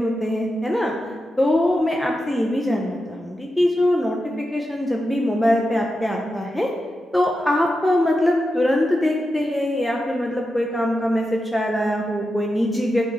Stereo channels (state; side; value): normal; both; correlation 0.89